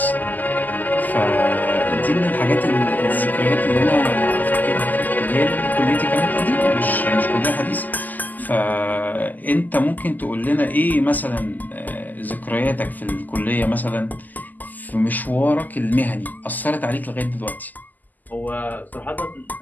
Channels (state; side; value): late; right; 0.084 ms